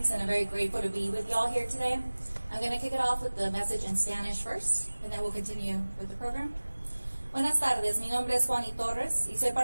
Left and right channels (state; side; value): inverted; both; correlation -1.00